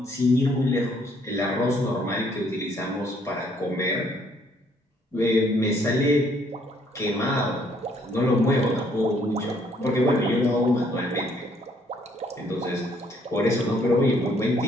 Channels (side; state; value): both; normal; correlation 0.66